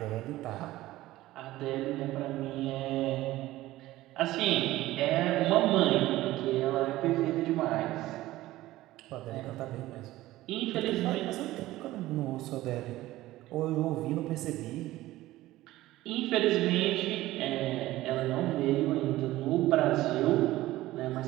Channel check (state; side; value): quieter; left; 16.5 dB